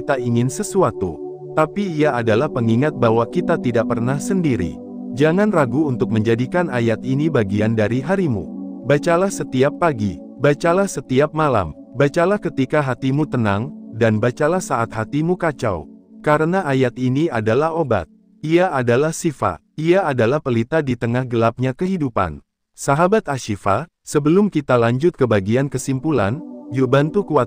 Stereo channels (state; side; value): identical; both; correlation 1.00